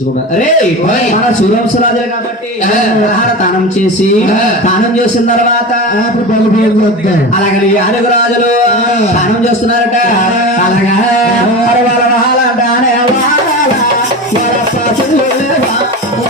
అరే మన సూరంశు రాజులు కాబట్టి తానం చేసి తానం చేసిన తర్వాత అలాగే ఆరుగురు రాజులు తానం చేస్తున్నారట అలాగా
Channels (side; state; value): both; normal; correlation 0.27